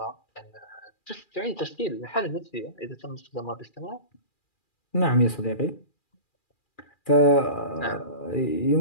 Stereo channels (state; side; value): late; right; 2.4 ms